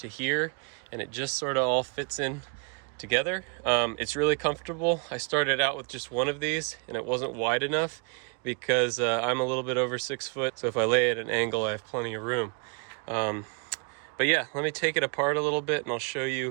here, and it just sort of all fits in together. It's really comfortable. I started out with just one of these, and it wasn't wide enough because I'm a little bit over 6 foot, so if I lay at an angle, I have plenty of room. But yeah, let me take it apart a little bit, and I'll show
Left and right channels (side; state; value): left; quieter; 36.6 dB